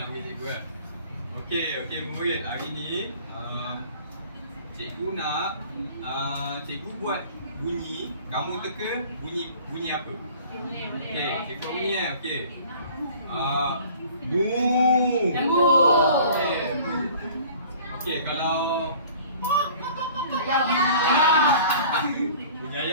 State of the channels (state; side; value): inverted; both; correlation -0.48